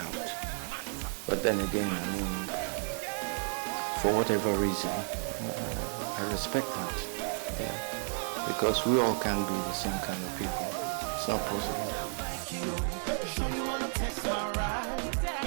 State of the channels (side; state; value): left; silent; 56 dB below the other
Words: But then again, for whatever reason, I respect that, because we all can be the same kind of people. It's not possible.